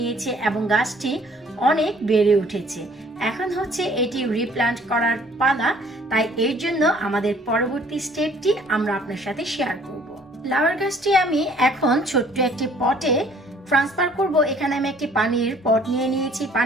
এবং গাছটি অনেক বেড়ে উঠেছে। এখন হচ্ছে এটি রিপ্লান্ট করার পালা, তাই এর জন্য আমাদের পরবর্তী স্টেপটি আমরা আপনার সাথে শেয়ার করব। লাউয়ের গাছটি আমি এখন ছোট্ট একটি পটে ট্রান্সফার করব। এখানে আমি একটি পানির পট নিয়ে নিয়েছি।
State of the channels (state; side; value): normal; both; correlation 0.57